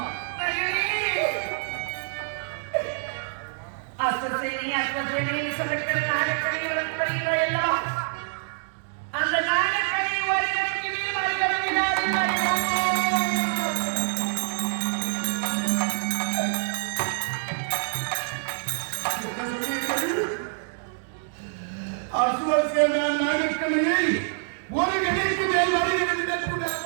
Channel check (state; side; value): silent; left; digital silence